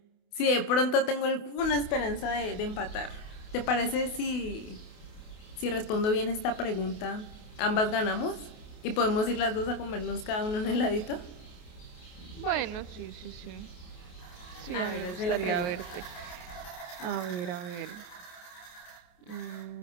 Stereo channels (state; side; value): late; right; 28 ms